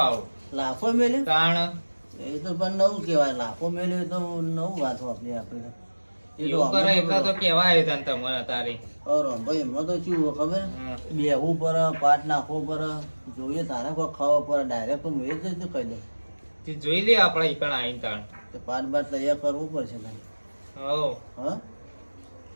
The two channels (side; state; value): both; inverted; correlation -1.00